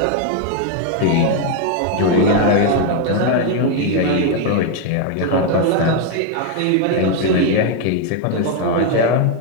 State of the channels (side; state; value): both; different; correlation 0.01